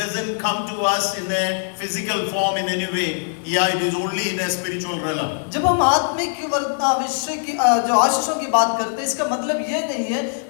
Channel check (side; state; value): right; silent; 57 dB below the other